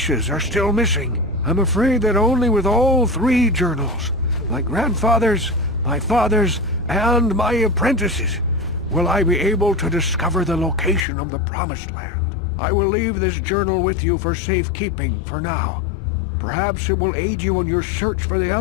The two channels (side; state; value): right; drops out; at 11.1 s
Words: are still missing. I'm afraid that only with all three journals, my grandfather's, my father's, and my apprentice's, will I be able to discover the location of the Promised Land. I will leave this journal with you for safekeeping for now. Perhaps it will aid you in your search for the